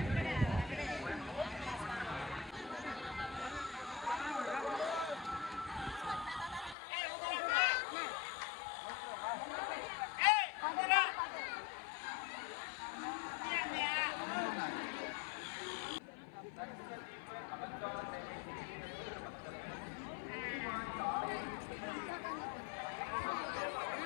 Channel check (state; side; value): drops out; right; at 6.8 s